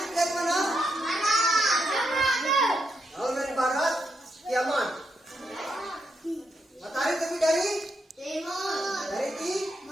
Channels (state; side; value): normal; both; correlation 0.81